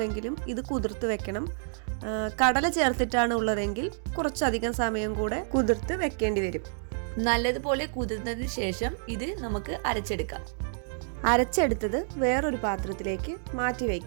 ഇത് കുതിർത്ത് വെക്കണം. കടല ചേർത്തിട്ടാണ് ഉള്ളതെങ്കിൽ കുറച്ചധികം സമയം കൂടെ കുതിർത്ത് വെക്കേണ്ടി വരും. നല്ലതുപോലെ കുതിർന്നതിന് ശേഷം ഇത് നമുക്ക് അരച്ചെടുക്കാം. അരച്ചെടുത്തത് വേറൊരു പാത്രത്തിലേക്ക് മാറ്റി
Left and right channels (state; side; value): silent; left; digital silence